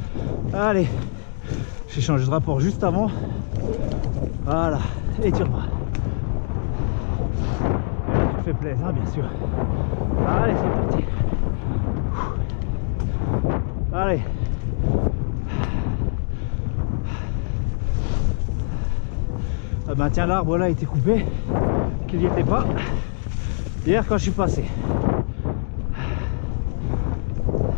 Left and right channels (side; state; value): right; silent; digital silence